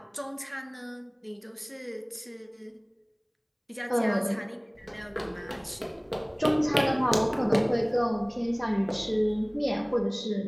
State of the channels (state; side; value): identical; both; correlation 1.00